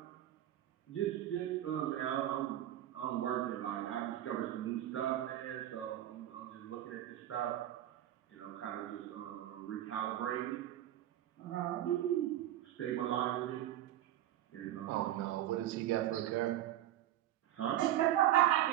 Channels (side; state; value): left; quieter; 12.8 dB